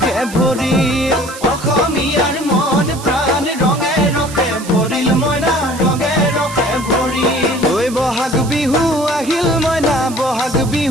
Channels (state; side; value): noise; right; hiss, 14 dB below the sound